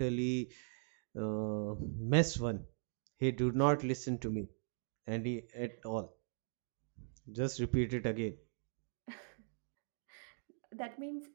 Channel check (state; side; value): silent; left; digital silence